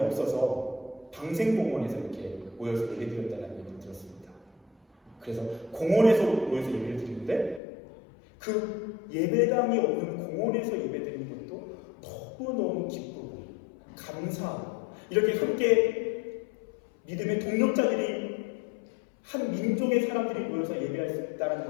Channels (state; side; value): drops out; right; at 7.6 s